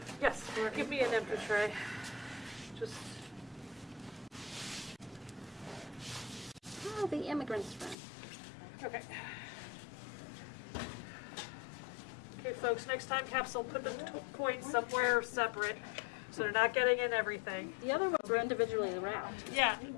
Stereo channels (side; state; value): right; drops out; at 8.0 s